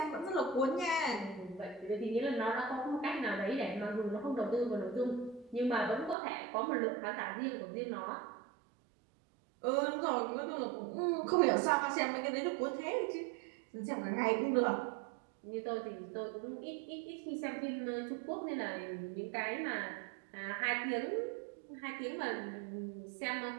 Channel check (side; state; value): left; drops out; at 6.2 s